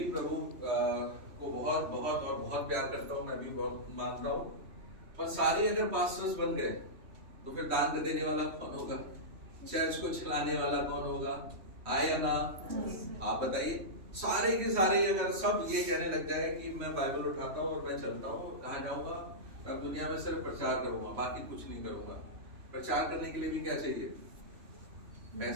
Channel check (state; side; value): late; left; 3.1 ms